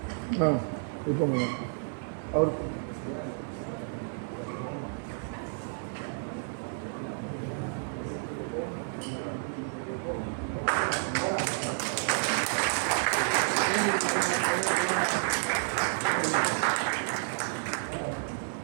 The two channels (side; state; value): left; silent; digital silence